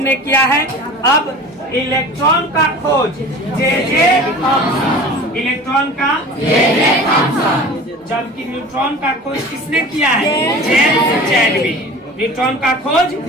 ने किया है। अब इलेक्ट्रॉन का खोज जे थॉमसन। इलेक्ट्रॉन का जबकि न्यूट्रॉन का खोज किसने किया है? James Chadwick. न्यूट्रॉन का खोज।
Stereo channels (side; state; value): both; normal; correlation 0.39